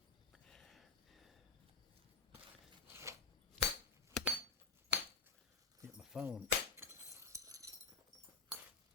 Get my phone.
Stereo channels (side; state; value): right; quieter; 4.7 dB